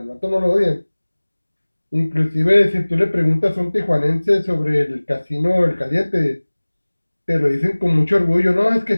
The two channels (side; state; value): both; inverted; correlation -1.00